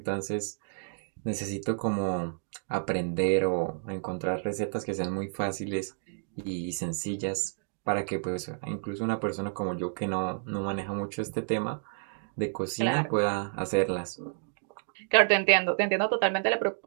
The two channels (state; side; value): silent; left; digital silence